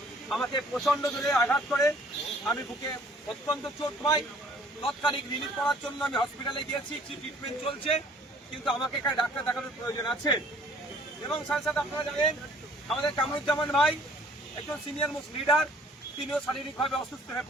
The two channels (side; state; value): both; normal; correlation 0.56